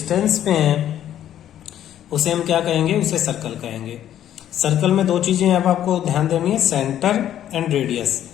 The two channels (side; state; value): right; quieter; 11.2 dB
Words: पे है उसे हम क्या कहेंगे? उसे सर्कल कहेंगे। सर्कल में दो चीजें अब आपको ध्यान देनी है, सेंटर एंड रेडियस।